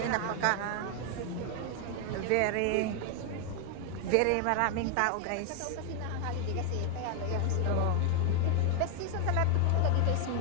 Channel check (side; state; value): both; different; correlation 0.00